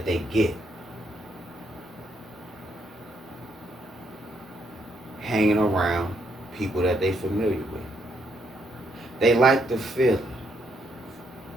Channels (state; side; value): normal; both; correlation 0.75